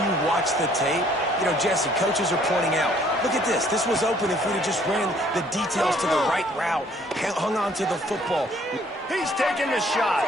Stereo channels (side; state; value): both; normal; correlation 0.60